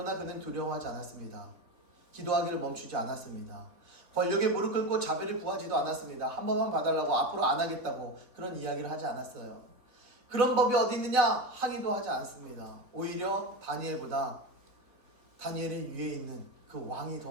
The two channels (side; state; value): left; late; 3.6 ms